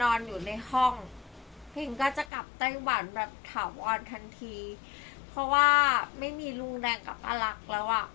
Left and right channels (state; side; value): drops out; right; at 2.3 s